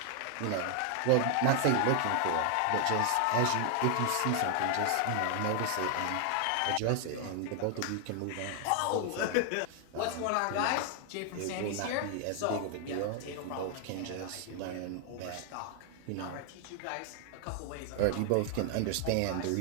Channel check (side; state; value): both; different; correlation 0.00